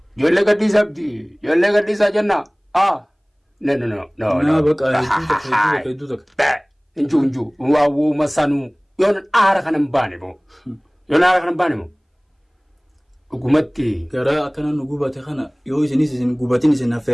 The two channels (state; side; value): identical; both; correlation 1.00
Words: Ijoollee gadhiisaa abdii. Ijoollee gadhiisaa jennaa. No. Nah, bakka hedduu takka. Inju. Waawuu masanuu. Yoon aara kanan baane moo. Dhugumatti. Garaa akkana nu gubate kana yoo isinis isin gubatin isin